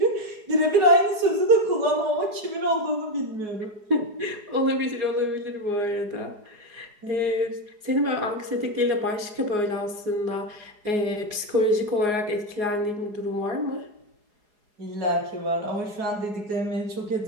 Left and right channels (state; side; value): late; left; 4.8 ms